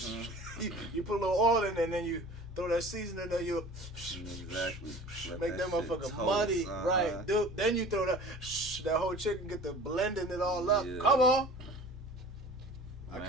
you put a little oil in there and then you throw that seasoning in there. You Exactly. make that shit motherfucker toast, muddy, right? Dude, then you throw that whole chicken, get the blending it all up. Yeah. Come on. I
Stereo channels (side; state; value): both; normal; correlation 0.42